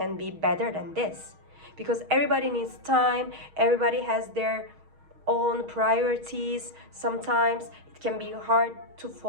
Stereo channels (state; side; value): late; left; 6.4 ms